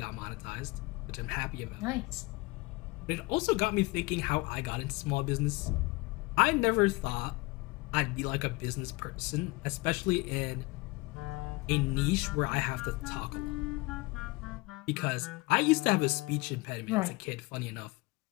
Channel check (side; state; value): right; quieter; 24.0 dB